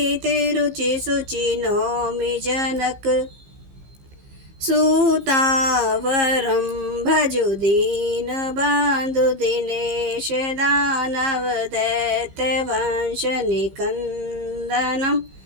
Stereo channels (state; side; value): late; left; 15 ms